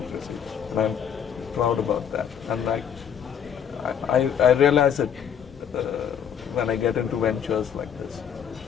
and I'm proud about that. And I realize it when I get into ventures like this.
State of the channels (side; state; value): right; quieter; 8.3 dB